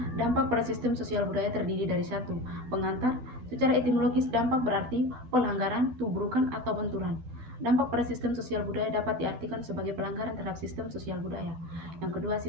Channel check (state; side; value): late; left; 12 ms